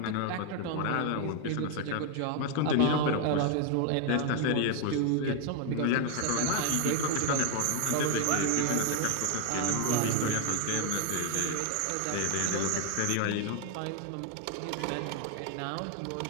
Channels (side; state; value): both; different; correlation 0.00